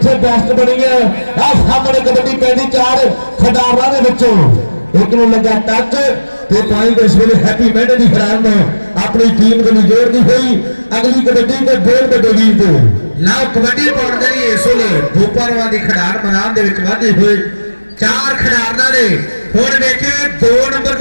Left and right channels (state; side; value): inverted; both; correlation -1.00